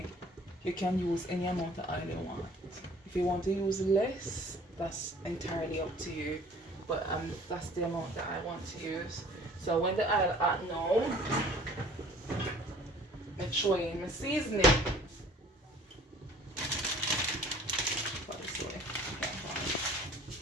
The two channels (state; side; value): normal; both; correlation 0.51